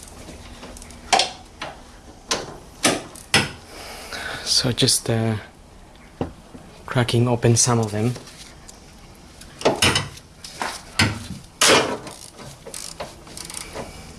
So just cracking open some of them.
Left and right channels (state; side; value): identical; both; correlation 1.00